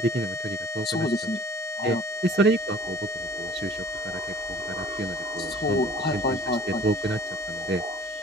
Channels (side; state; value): both; normal; correlation 0.48